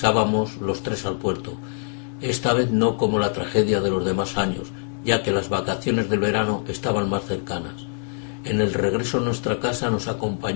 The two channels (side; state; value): right; silent; digital silence